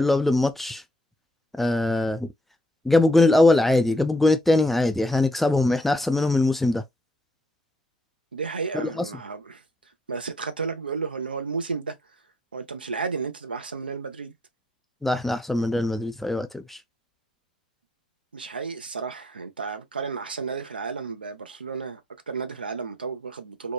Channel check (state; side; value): normal; both; correlation 0.73